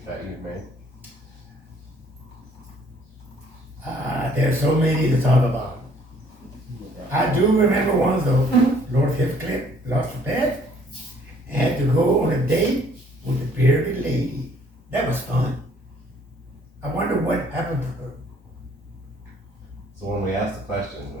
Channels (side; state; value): both; normal; correlation 0.60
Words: bet you've made? There's so many to talk about. I do remember one though. Lord Heathcliff lost a bet and had to go on a date with a bearded lady. That was fun. I wonder what happened to her. So when we ask the questions,